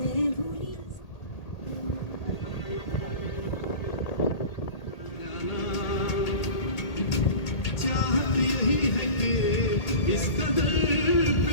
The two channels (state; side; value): late; right; 1.8 ms